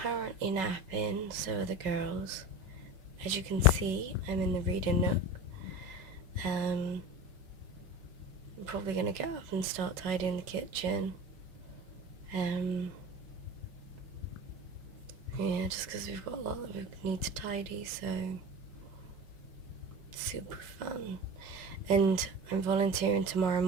currently napping, so are the girls. As you can see, I'm in the reading nook. I'm probably going to get up and start tidying the kitchen. Yeah, just because we've got a lot that we need to tidy, so super fun. And I'm volunteering tomorrow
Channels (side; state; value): left; late; 5.4 ms